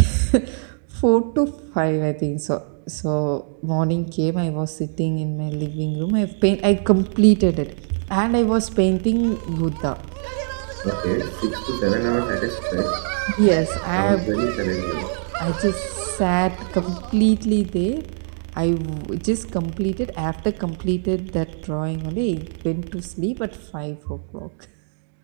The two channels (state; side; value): silent; left; digital silence